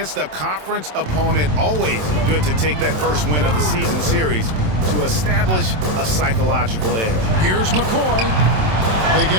a conference opponent, always good to take that first win of the season series to establish a psychological edge. Here's McCoy. They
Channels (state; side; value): late; left; 27 ms